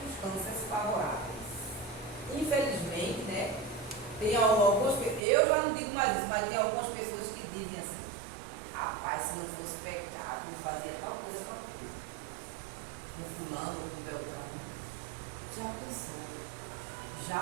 favoráveis. Infelizmente, né, tem algumas pessoas, eu já não digo mais isso, mas tem algumas pessoas que dizem assim, rapaz, se não fosse pecado, eu fazia tal coisa, tal coisa. Com fulano, com Beltrano. Já pensou?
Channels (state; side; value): drops out; left; at 5.2 s